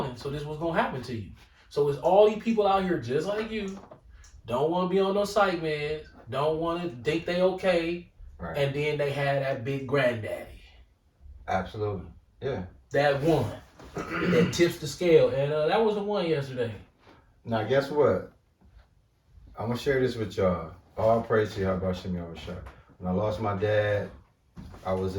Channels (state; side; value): identical; both; correlation 1.00